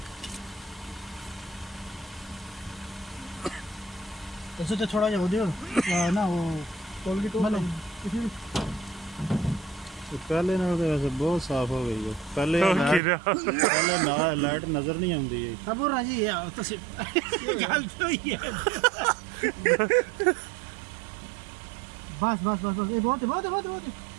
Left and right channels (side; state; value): left; drops out; at 13.0 s